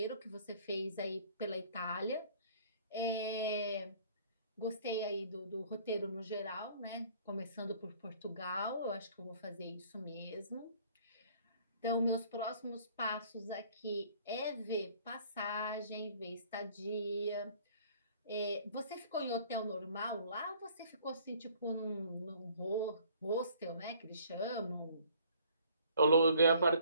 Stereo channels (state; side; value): inverted; both; correlation -0.56